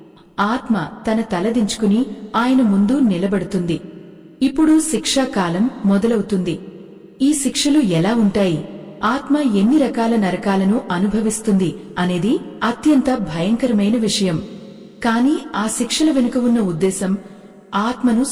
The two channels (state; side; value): identical; both; correlation 1.00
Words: ఆత్మ తన తలదించుకుని ఆయన ముందు నిలబడుతుంది. ఇప్పుడు శిక్షాకాలం మొదలవుతుంది. ఈ శిక్షలు ఎలా ఉంటాయి, ఆత్మ ఎన్ని రకాల నరకాలను అనుభవిస్తుంది అనేది అత్యంత భయంకరమైన విషయం. కాని ఆ శిక్షల వెనుక ఉన్న ఉద్దేశం ఆత్మను